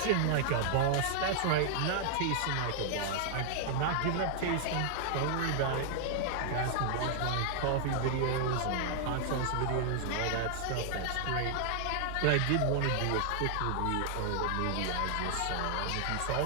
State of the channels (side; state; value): both; different; correlation -0.01